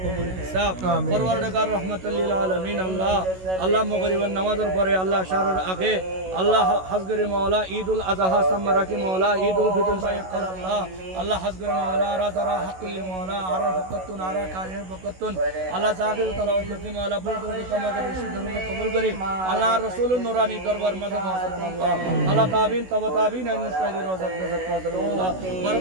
الحساب পরওয়ারদিগার রাহমাতাল লিল আলামিন আল্লাহ মগরিবের নামাজের পরে আল্লাহ শাহরের আগে আল্লাহ হাজগরে মাওলা ঈদুল আযহা সামরাকি মাওলা ঈদুল ফিতর সাইকাল আল্লাহ হাজগরে মাওলা রাজারা হাকুল মাওলা আরা ফকতুন আরা কারির ফকতুন আল্লাহ জাহির তালাওয়াত করতে মাওলা বুলদুর কামা করে সুন্দর কবুল করি আল্লাহ রাসূলুর নূরানি দরবার মাঝে আল্লাহ তাবিন তবা তাবিন আইন সাইদি রওজাত গজত মাঝে মাওলা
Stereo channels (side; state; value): left; late; 16 ms